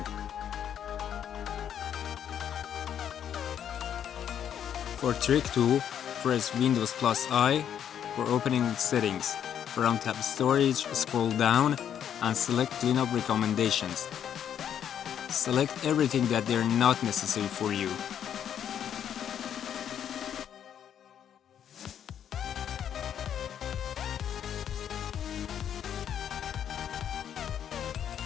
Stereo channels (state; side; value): quieter; right; 9.2 dB